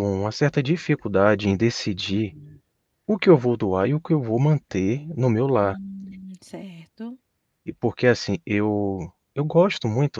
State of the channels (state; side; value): identical; both; correlation 1.00